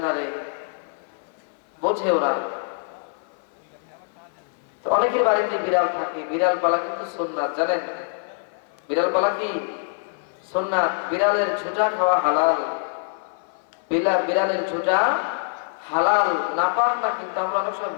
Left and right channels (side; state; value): right; silent; 58 dB below the other